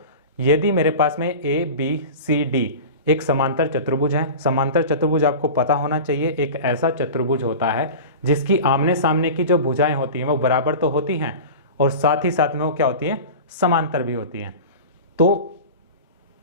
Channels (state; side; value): inverted; both; correlation -0.32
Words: यदि मेरे पास में ए बी सी डी एक समांतर चतुर्भुज है, समांतर चतुर्भुज आपको पता होना चाहिए एक ऐसा चतुर्भुज होता है जिसकी आमने सामने की जो भुजाएं होती हैं वो बराबर तो होती हैं और साथ ही साथ में वो क्या होती हैं, समांतर भी होती हैं। तो